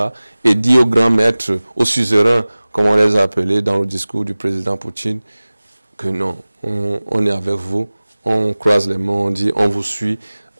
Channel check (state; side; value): inverted; both; correlation -0.99